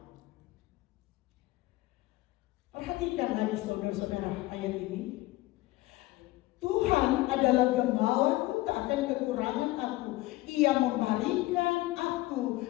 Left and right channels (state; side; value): quieter; right; 19.1 dB